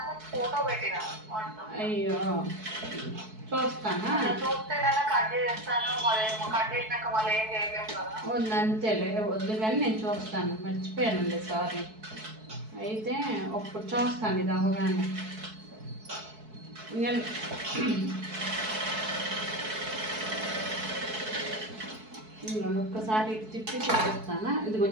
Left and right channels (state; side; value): late; left; 4.6 ms